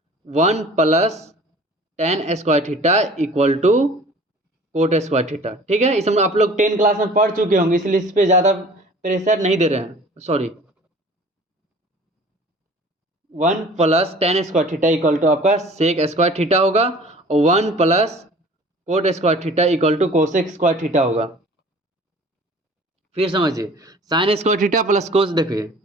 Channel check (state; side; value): normal; both; correlation 0.46